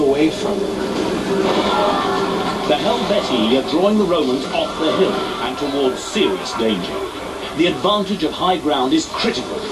from them. The Helvetii are drawing the Romans off the hill and towards serious danger. The advantage of high ground is critical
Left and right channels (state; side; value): identical; both; correlation 1.00